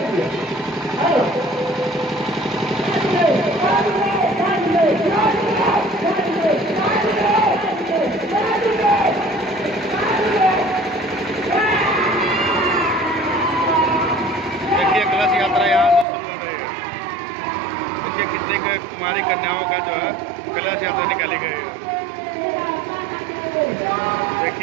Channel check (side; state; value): left; drops out; at 16.1 s